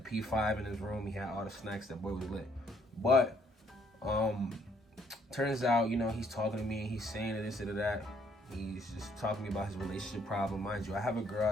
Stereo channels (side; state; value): both; normal; correlation 0.67